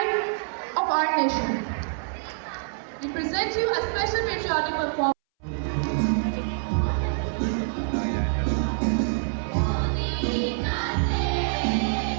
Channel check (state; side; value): silent; left; 61 dB below the other